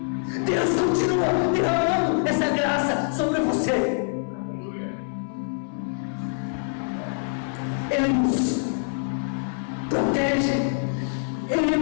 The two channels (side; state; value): right; silent; 62 dB below the other